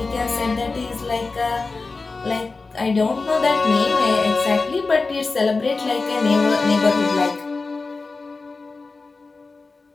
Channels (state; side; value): quieter; right; 3.9 dB